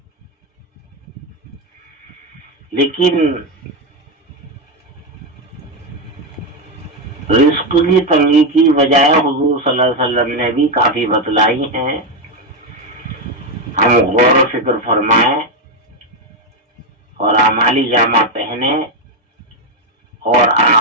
لیکن رزق کی تنگی کی وجہ حضور صلی اللہ علیہ وسلم نے بھی کافی بتلائی ہیں. ہم غور و فکر فرمائیں اور اعمالی جامہ پہنے اور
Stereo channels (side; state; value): both; normal; correlation 0.07